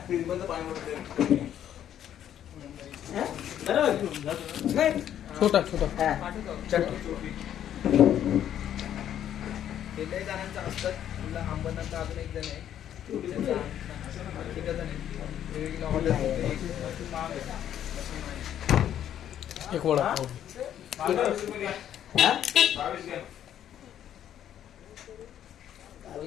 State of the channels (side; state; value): right; quieter; 10.5 dB